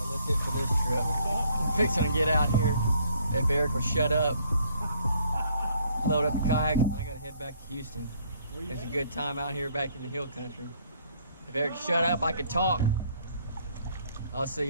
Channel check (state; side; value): inverted; both; correlation -0.64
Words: It for this trip. I'm fixing to get out here. If Eric will shut up, load up the kayak. I gotta head back to Houston. It's a good time out here back in the hill country. If Eric shut up, I could talk. I'll see